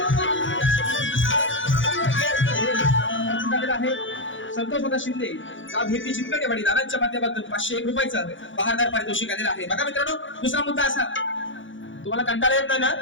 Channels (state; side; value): late; right; 0.56 ms